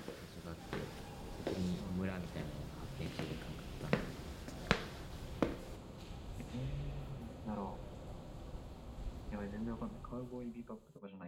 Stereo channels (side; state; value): both; identical; correlation 1.00